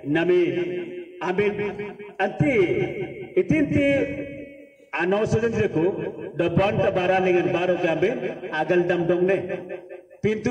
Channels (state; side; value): identical; both; correlation 1.00